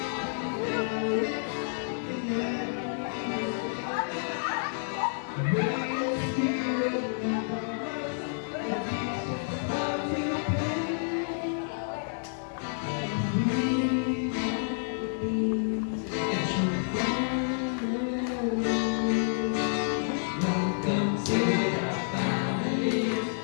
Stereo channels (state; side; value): silent; right; digital silence